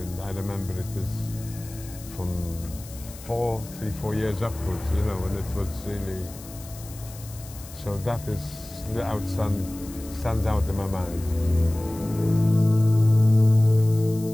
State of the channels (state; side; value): noise; left; hiss, 17 dB below the sound